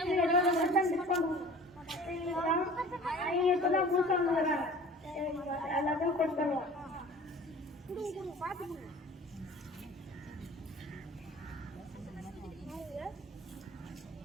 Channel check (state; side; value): normal; both; correlation 0.44